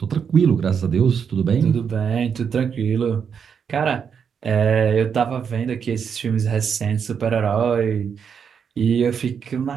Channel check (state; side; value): quieter; left; 7.0 dB